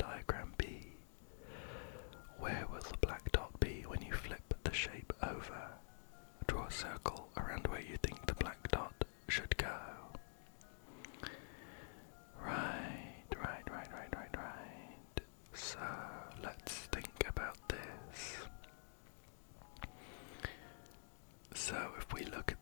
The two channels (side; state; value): right; silent; digital silence